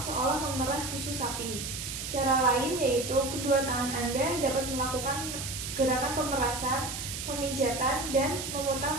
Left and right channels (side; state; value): right; noise; hiss, 6 dB below the sound